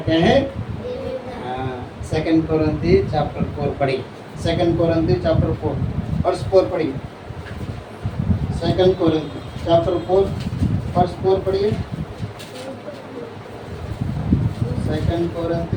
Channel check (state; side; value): identical; both; correlation 1.00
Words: है? सेकंड कोरिन्थी चैप्टर 4 पढ़ी, सेकंड कोरिन्थी चैप्टर 4 वर्स 4 पढ़िए। सेकंड कोरिन्थी चैप्टर 4 वर्स 4 पढ़िए। Second